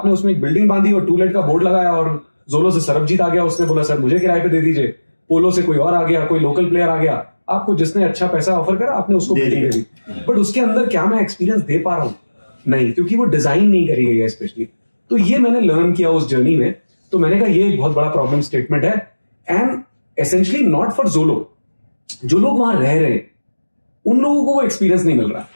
उसमें एक बिल्डिंग बांधी और टूलेट का बोर्ड लगाया, और जोलो से सरबजीत आ गया, उसने बोला सर मुझे किराए पे दे दीजिए, पोलो से कोई और आ गया, कोई लोकल प्लेयर आ गया, आपको जिसने अच्छा पैसा ऑफर करा आपने उसको बिल्डिंग दे दी। बट उसके अंदर क्या मैं एक्सपीरियंस दे पा रहा हूँ? नहीं, क्योंकि वो डिजाइन नहीं करी गई है स्पेशली। तो ये मैंने लर्न किया उस जर्नी में। तो मैंने कहा ये एक बहुत बड़ा प्रॉब्लम स्टेटमेंट है एंड एसेंशियली नॉट फॉर जोलो, जो लोग वहां रह रहे हैं उन लोगों को वो एक्सपीरियंस नहीं मिल रहा।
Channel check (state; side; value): inverted; both; correlation -1.00